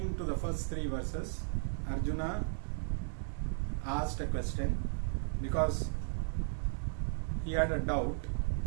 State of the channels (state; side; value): silent; left; digital silence